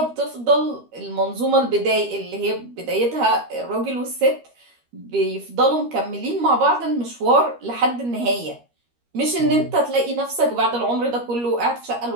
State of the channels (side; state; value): left; late; 13 ms